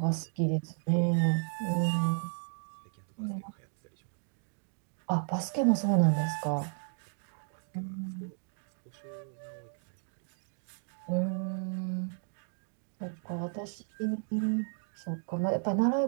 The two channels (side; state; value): left; silent; 55 dB below the other